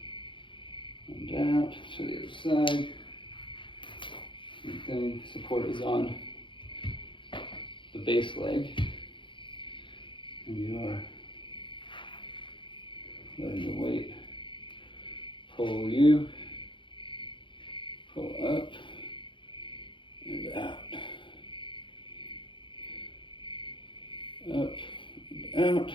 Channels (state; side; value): late; right; 0.24 ms